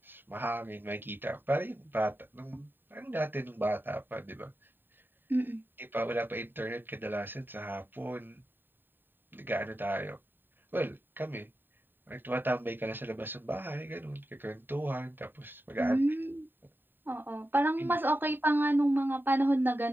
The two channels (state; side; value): late; left; 0.094 ms